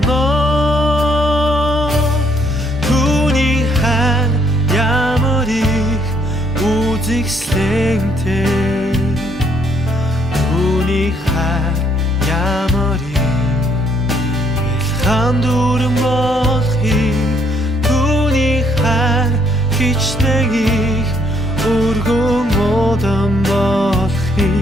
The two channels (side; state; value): both; normal; correlation 0.68